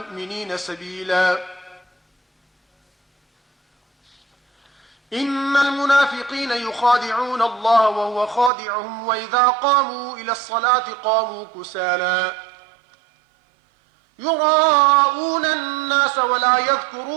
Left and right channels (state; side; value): drops out; left; at 8.5 s